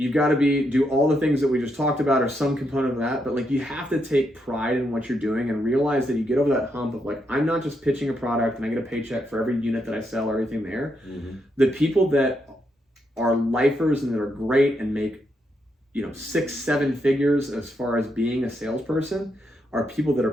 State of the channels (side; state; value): both; normal; correlation 0.80